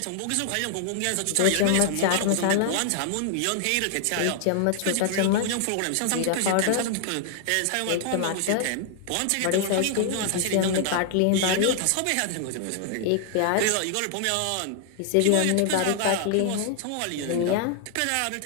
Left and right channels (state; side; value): different; both; correlation 0.00